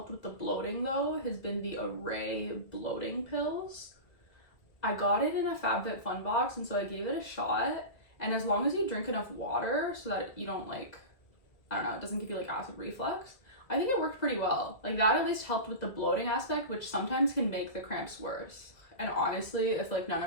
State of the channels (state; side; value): late; right; 2.0 ms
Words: with the bloating though has been the Array bloating pills. I got it in a FabFitFun box, and so I gave it a shot. And as long as you drink enough water so that you don't like, I don't know, it doesn't give you like acid reflux, I think it worked pretty well. Like, that at least helped with the bloating aspect, which sometimes can make the cramps worse. And honestly, if like none